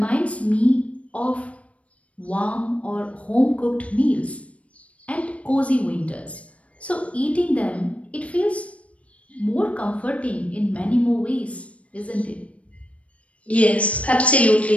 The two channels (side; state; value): right; late; 0.064 ms